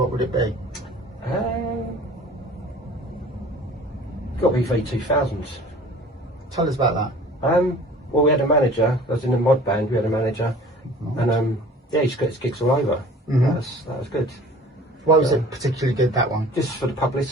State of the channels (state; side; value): normal; both; correlation 0.47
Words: would it be? Got to be V2000s. Tell us about that. Well, we had a manager. I was in a mod band. We had a manager, and yeah, he just got his gigs all over. That was good. Why was it particularly good, that one? Just for the